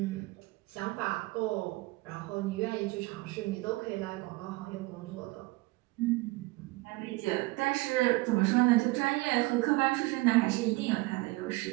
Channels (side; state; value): left; quieter; 22.4 dB